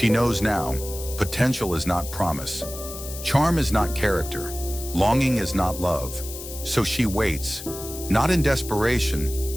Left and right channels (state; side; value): noise; left; hiss, 11 dB below the sound